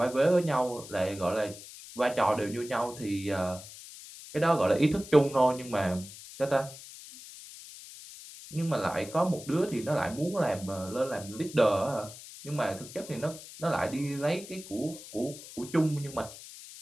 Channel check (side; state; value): left; noise; hiss, 15 dB below the sound